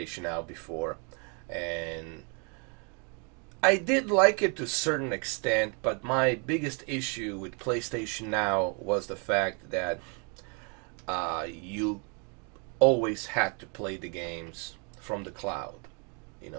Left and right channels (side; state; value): left; quieter; 36.5 dB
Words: Now before, and I did like it to a certain extent, but my biggest issue with PlayStation Now was the fact that you always had to play the games from the cloud.